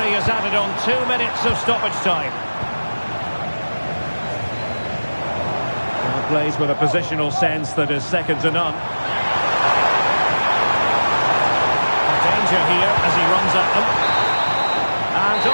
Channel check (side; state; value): both; inverted; correlation -1.00